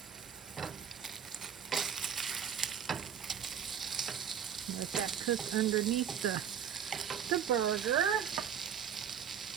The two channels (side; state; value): left; quieter; 8.4 dB